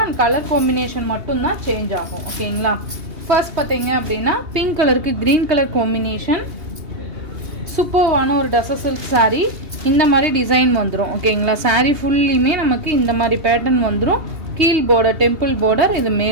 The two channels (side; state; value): left; late; 2.8 ms